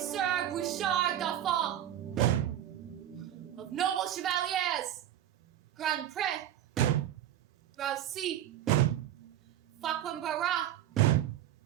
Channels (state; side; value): quieter; left; 11.6 dB